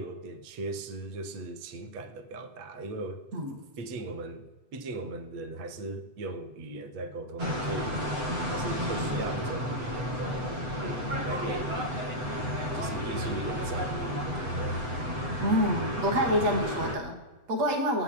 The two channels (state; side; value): late; left; 7.9 ms